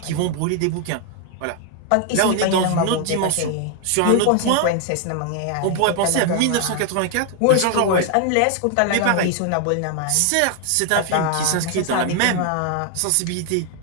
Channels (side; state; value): both; different; correlation 0.00